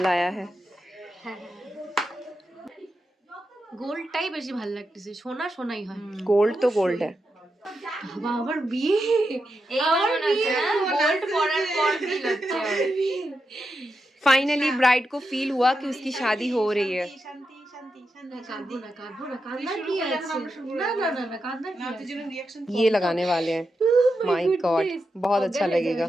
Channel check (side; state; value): both; normal; correlation 0.87